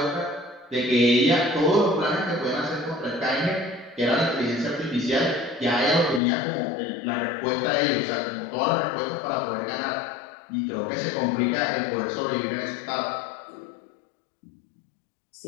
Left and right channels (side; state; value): right; drops out; at 6.2 s